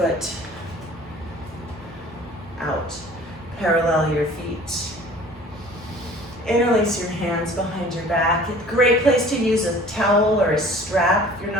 out. Parallel your feet. Interlace your hands behind your back. Great place to use a towel or a strap if you're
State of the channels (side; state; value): both; normal; correlation 0.48